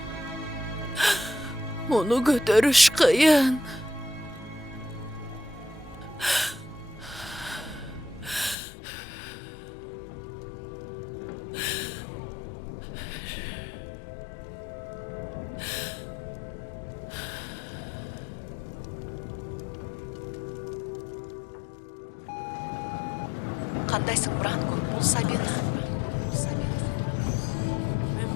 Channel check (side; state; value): right; drops out; at 8.6 s